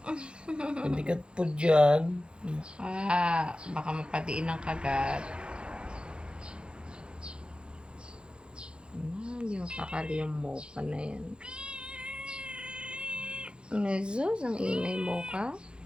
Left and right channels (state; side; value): late; left; 0.054 ms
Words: Hindi ka po dyan. Baka mapatiin ng kagat. Hindi mapakali yung Mocha na yan. Nazus, ang ingay Mocha.